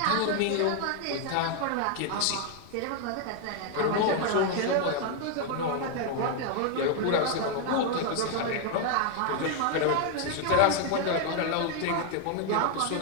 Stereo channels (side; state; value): both; different; correlation 0.01